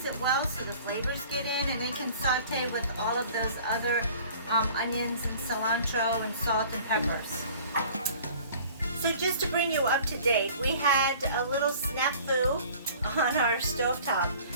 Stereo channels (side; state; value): both; inverted; correlation -0.48